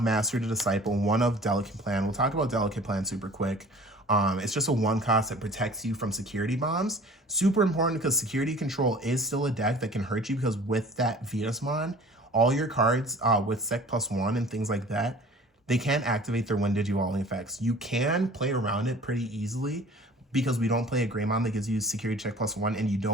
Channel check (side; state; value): both; normal; correlation 0.46